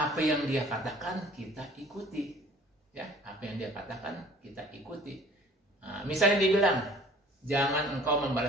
yang Dia katakan kita ikuti. Ya, apa yang Dia katakan kita ikuti. Nah, misalnya dia bilang, jangan engkau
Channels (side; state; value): both; normal; correlation 0.50